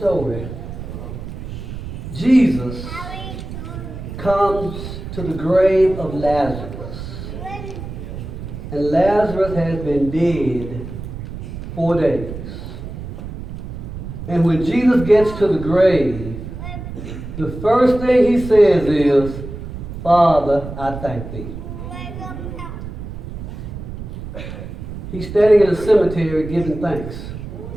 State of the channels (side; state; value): right; noise; rumble, 9 dB below the sound